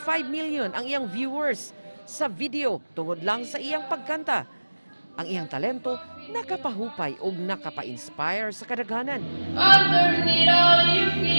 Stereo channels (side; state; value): both; inverted; correlation -1.00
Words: million ang iyang viewers sa video tungod lang sa iyang pagkanta. Ang iyang talento nakapahupay o nakapa-inspire sa kadaghanan. Underneath all you